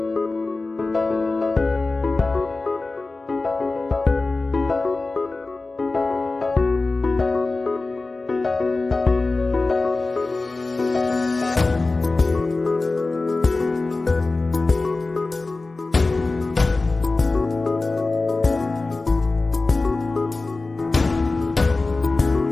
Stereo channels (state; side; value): quieter; right; 3.4 dB